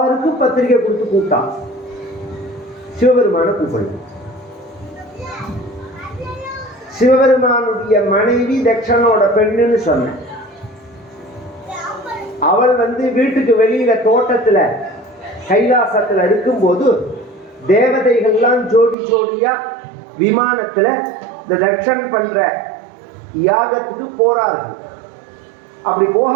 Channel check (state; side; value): drops out; left; at 18.9 s